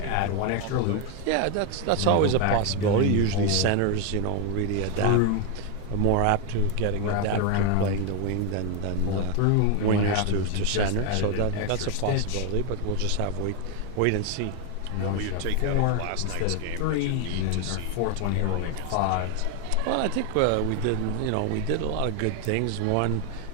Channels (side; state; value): both; different; correlation 0.01